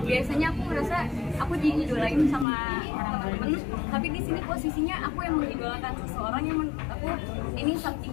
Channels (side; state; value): right; drops out; at 2.5 s